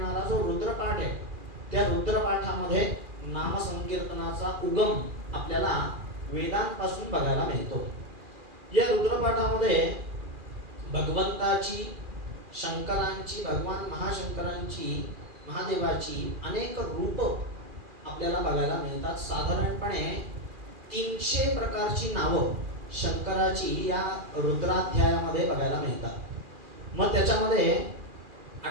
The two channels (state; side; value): late; left; 2.4 ms